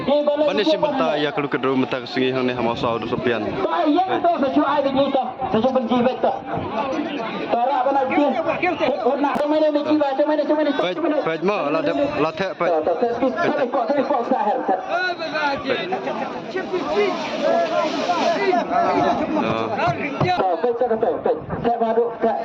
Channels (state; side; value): identical; both; correlation 1.00